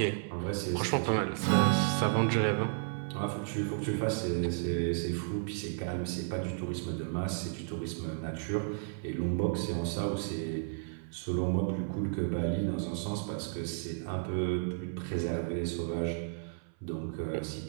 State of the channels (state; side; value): silent; left; 56 dB below the other